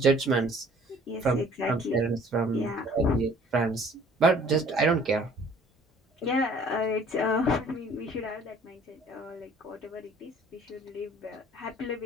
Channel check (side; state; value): both; normal; correlation 0.54